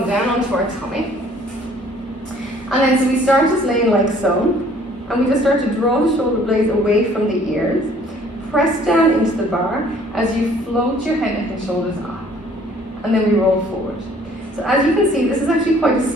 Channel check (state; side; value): normal; both; correlation 0.57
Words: down onto our tummy, and then so we start just laying like so, and we just start to draw the shoulder blades away from the ears. Press down into the bar as you float your head, neck and shoulders up, and then we roll forward. So as you can see, this is actually quite a